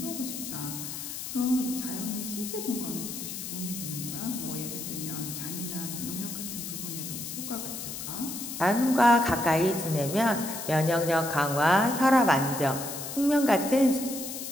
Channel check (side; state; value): left; noise; hiss, 7 dB below the sound